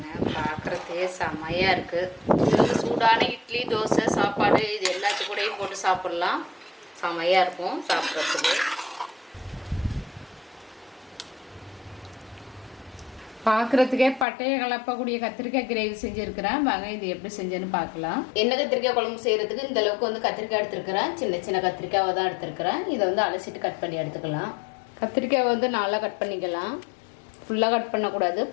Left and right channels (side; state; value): right; drops out; at 14.2 s